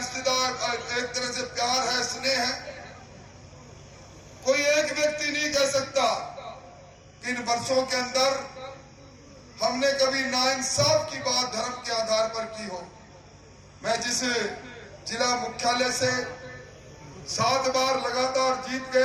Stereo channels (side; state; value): both; identical; correlation 1.00